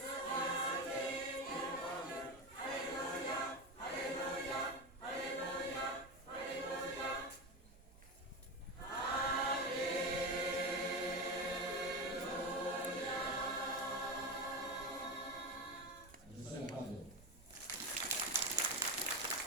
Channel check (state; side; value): noise; right; rumble, 22 dB below the sound